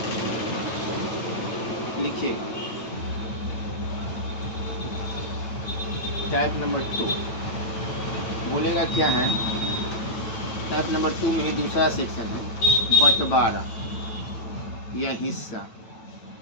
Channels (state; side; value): late; right; 9.0 ms